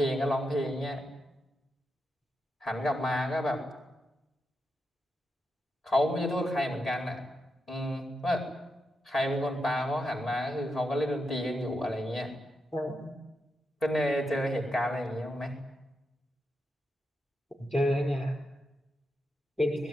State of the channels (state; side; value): normal; both; correlation 0.85